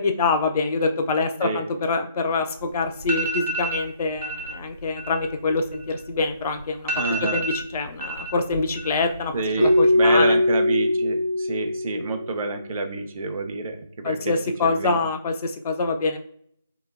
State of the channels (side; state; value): both; inverted; correlation -0.67